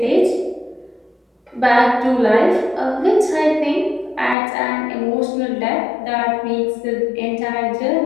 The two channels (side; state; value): right; drops out; at 4.4 s